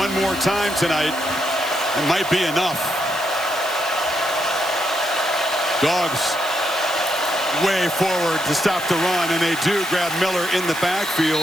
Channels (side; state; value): right; noise; hiss, 15 dB below the sound